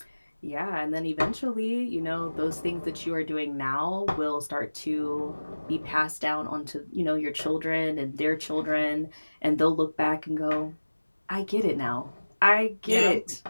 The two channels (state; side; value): inverted; both; correlation -1.00